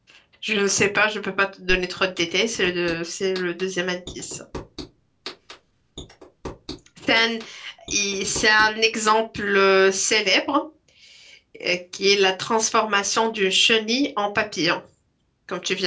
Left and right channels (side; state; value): both; identical; correlation 1.00